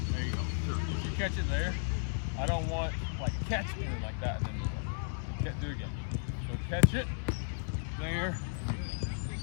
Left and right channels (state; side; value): silent; right; digital silence